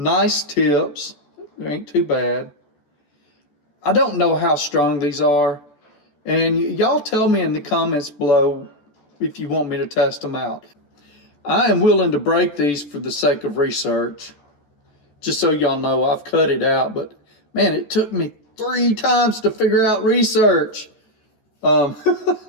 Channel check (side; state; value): right; late; 14 ms